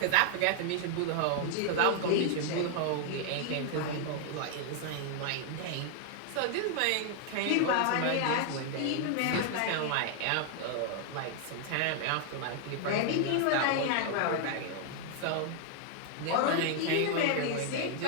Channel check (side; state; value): both; different; correlation 0.00